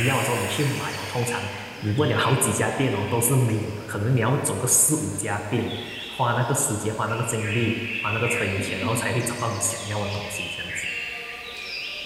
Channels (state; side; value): identical; both; correlation 1.00